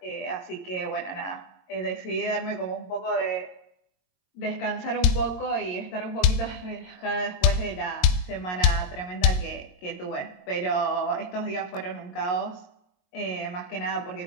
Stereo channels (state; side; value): late; right; 23 ms